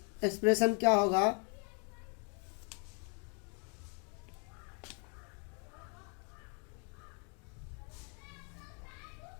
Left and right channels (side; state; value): right; quieter; 37.8 dB